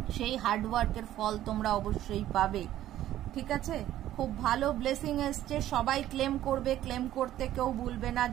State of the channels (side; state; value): left; quieter; 13.0 dB